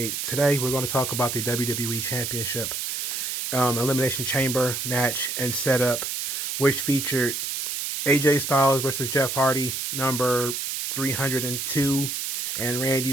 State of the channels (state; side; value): noise; right; hiss, 3 dB below the sound